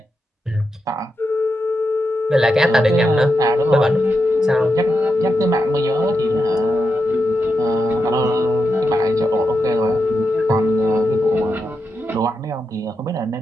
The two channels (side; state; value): both; normal; correlation 0.86